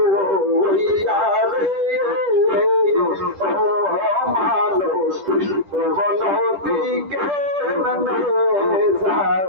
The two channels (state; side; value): late; left; 10 ms